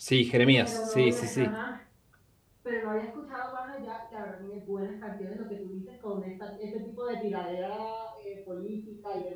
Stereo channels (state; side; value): identical; both; correlation 1.00